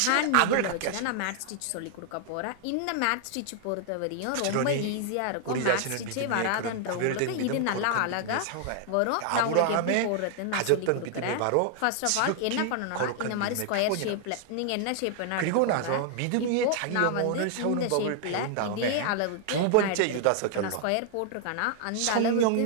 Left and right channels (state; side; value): different; both; correlation 0.00